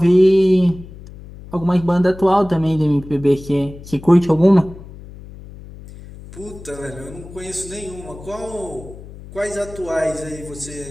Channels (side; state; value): left; noise; hum, 16 dB below the sound